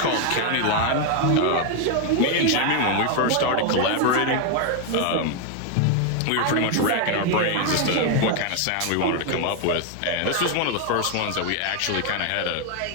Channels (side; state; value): both; different; correlation 0.01